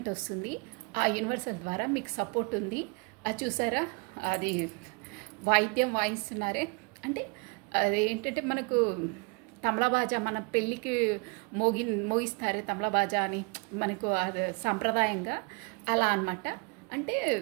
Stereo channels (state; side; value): quieter; left; 31.1 dB